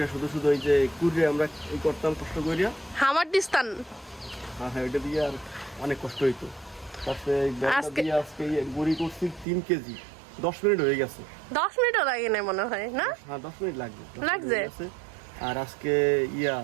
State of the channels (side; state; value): left; drops out; at 9.5 s